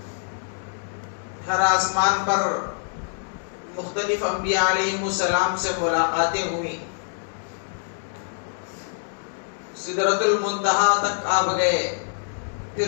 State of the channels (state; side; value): silent; right; digital silence